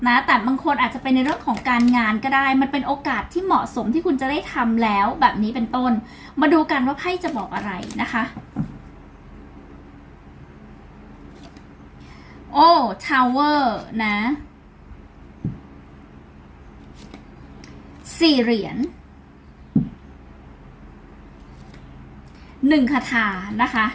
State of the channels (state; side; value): identical; both; correlation 1.00